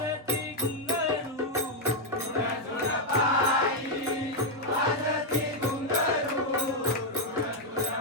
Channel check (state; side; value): normal; both; correlation 0.00